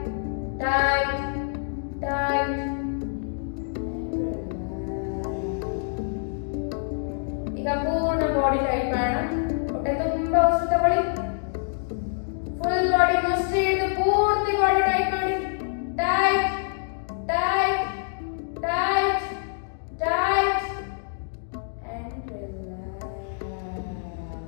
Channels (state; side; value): silent; right; digital silence